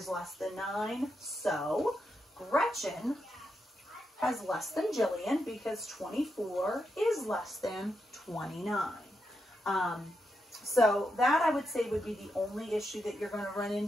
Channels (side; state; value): both; normal; correlation 0.84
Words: less than 9. So Gretchen has less than Jillian because 24 is less than 29. So that, I would say, would be the only issue that you're going to run